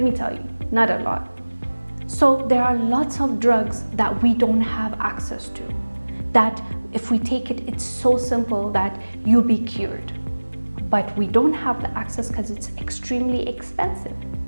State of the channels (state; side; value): inverted; both; correlation -1.00